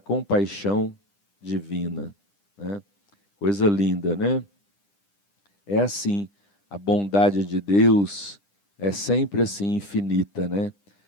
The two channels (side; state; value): right; late; 10 ms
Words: divina. Né? Coisa linda, né? É assim, a bondade de Deus é sempre assim infinita, né?